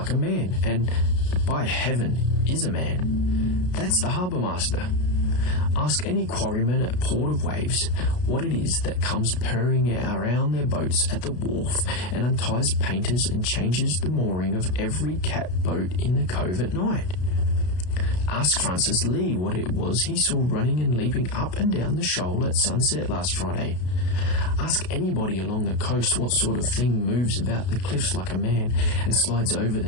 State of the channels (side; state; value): right; late; 33 ms